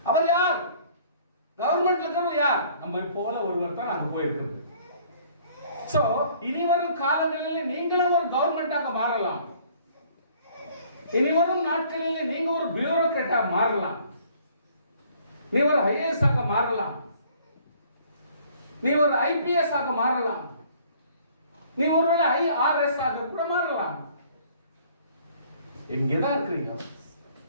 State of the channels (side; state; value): both; inverted; correlation -0.57